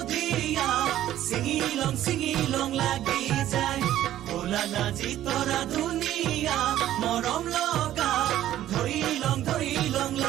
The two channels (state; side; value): quieter; left; 12.8 dB